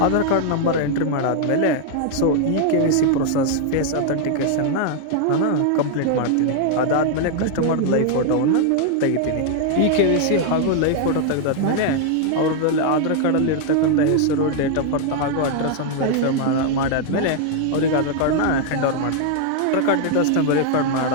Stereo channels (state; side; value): different; both; correlation 0.00